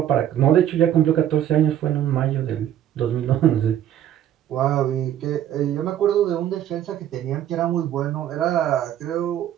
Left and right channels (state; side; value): quieter; left; 11.1 dB